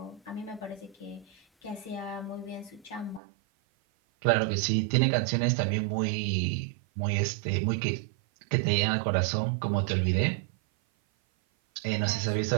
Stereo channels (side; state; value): left; drops out; at 3.2 s